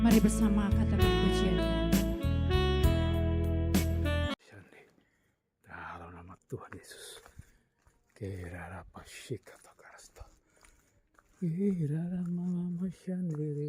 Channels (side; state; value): both; identical; correlation 1.00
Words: Mari bersama katakan pujian. Dalam nama Tuhan Yesus. Kirara pasika takarasta. Kirara mama